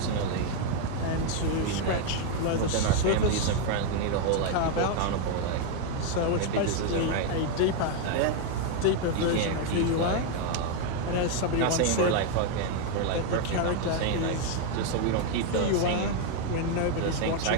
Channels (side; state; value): both; different; correlation 0.01